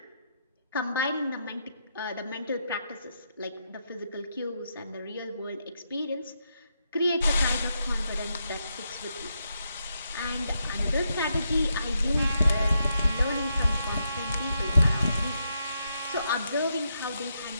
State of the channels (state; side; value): inverted; both; correlation -0.81